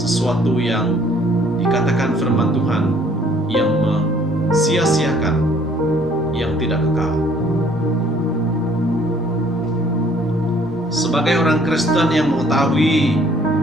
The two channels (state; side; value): normal; both; correlation 0.59